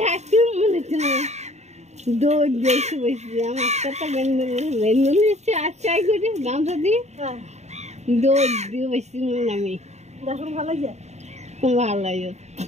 থাকতে মনে হচ্ছে না দৌড় দিয়েছি বসে আমার একটা বেন্দুল এসছে আর চাই করি গামছা দিয়ে দৌড় দিয়ে বসছি আমি দেখুন ভালো লাগে খুব ভালো লাগে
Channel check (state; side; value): late; left; 0.32 ms